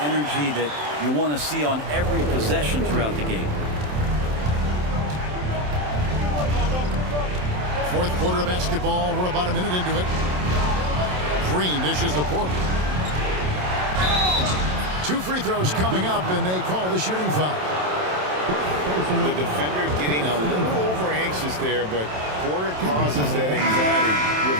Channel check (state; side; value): late; left; 27 ms